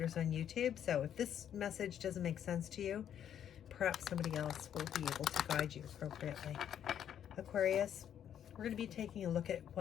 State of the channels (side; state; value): right; quieter; 9.6 dB